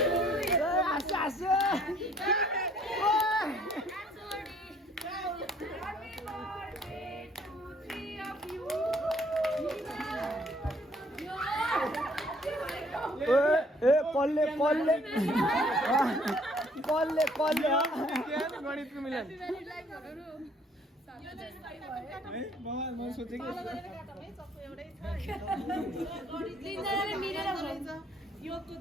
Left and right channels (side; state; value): both; normal; correlation 0.61